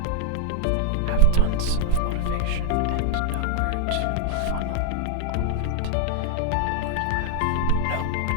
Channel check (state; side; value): different; both; correlation 0.00